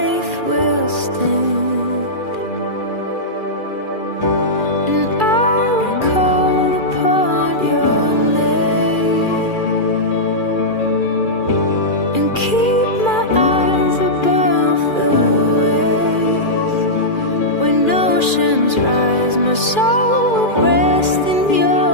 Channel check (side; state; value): right; late; 2.4 ms